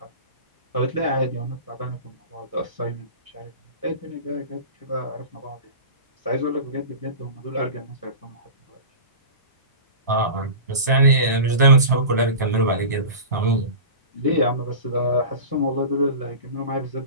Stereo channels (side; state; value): both; inverted; correlation -0.32